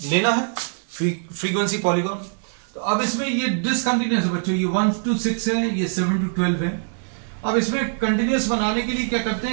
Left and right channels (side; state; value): left; silent; 64 dB below the other